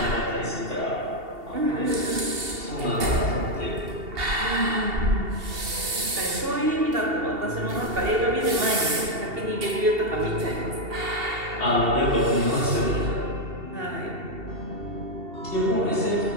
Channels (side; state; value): left; late; 2.7 ms